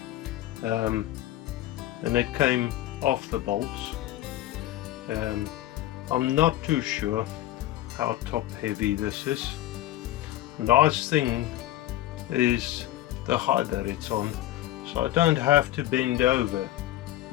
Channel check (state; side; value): quieter; right; 14.4 dB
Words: and it came off the bolts. I'm not too sure how top heavy this is. Nice thing is the height that it's on, so I don't have to bend over